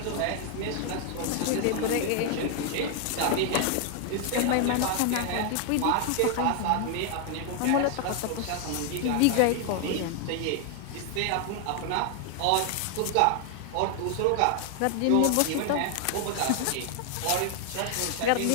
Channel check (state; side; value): different; both; correlation 0.00